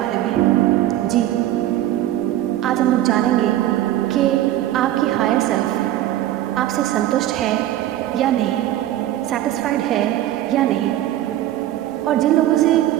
में। जी, आज हम लोग जानेंगे कि आपकी हायर सेल्फ आपसे संतुष्ट है या नहीं, सेटिस्फाइड है या नहीं, और जिन लोगों से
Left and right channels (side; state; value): left; quieter; 13.5 dB